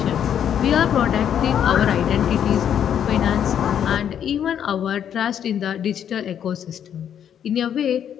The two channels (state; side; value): quieter; right; 9.2 dB